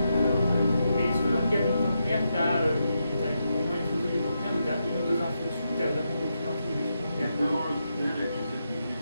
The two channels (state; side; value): inverted; both; correlation -0.84